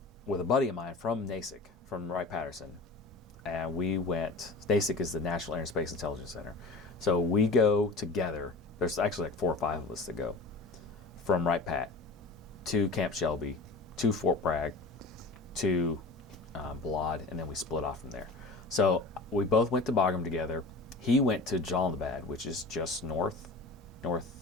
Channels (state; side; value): quieter; right; 3.4 dB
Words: with a buddy of mine from NASIC, from Wright-Patterson, and we went. NASIC is the National Air and Space Intelligence Center, so we go together. There's actually like 4 or 5 of us that go from Wright-Pat to Camp Shelby, to Fort Bragg, to Balad, and then we split off from there. So we both went to Bagram together. He went to Jalalabad, which is just